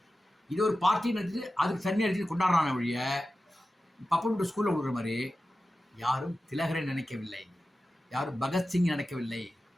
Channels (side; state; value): both; normal; correlation 0.94